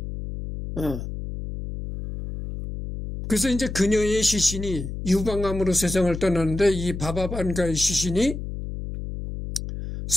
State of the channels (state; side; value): noise; left; hum, 7 dB below the sound